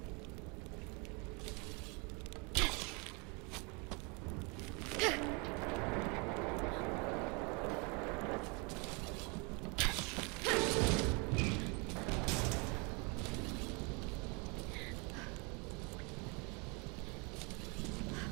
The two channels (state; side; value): quieter; left; 31.2 dB